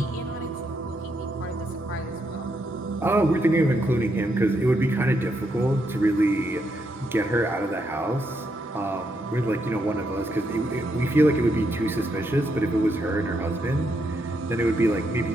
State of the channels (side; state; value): both; normal; correlation 0.79